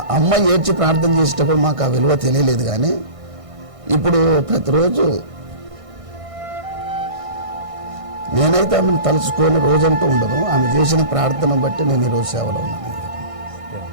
అమ్మ ఏడ్చి ప్రార్థన చేసేటప్పుడు మాకు ఆ విలువ తెలియలేదు. కానీ ఇప్పుడు ప్రతిరోజు నేనైతే ఆమెను తలుచుకొని రోజంటూ ఉండదు. ఆమె చేసిన ప్రార్థన బట్టి నేను ఈరోజు సేవలో ఉన్నాను.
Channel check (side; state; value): left; late; 1.6 ms